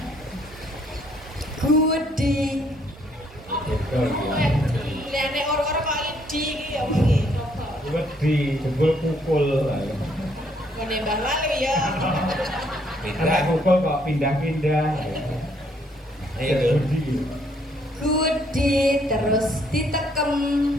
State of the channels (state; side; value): normal; both; correlation 0.68